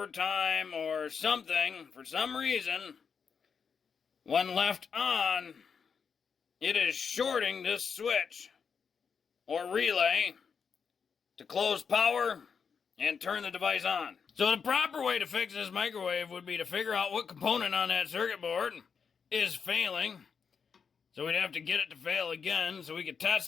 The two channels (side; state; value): right; quieter; 6.2 dB